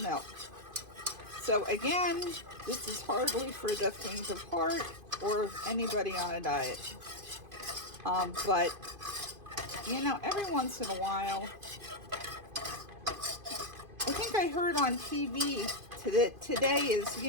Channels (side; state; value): left; late; 2.5 ms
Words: So again, this is hardly for the faint of heart or anybody on a diet. But, you know, every once in a while, I think I heard on TV that today is,